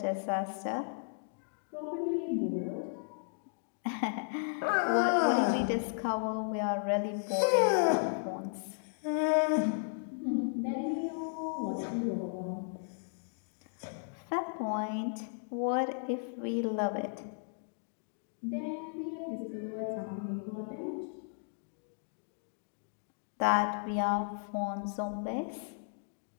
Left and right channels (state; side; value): silent; right; digital silence